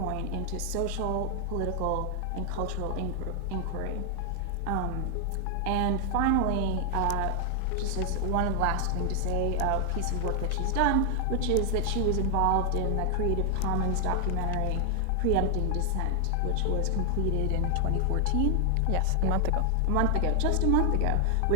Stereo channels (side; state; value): both; different; correlation 0.00